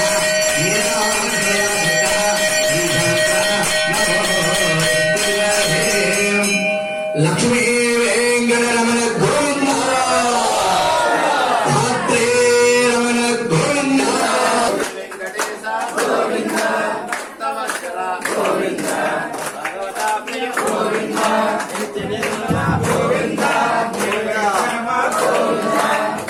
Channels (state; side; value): identical; both; correlation 1.00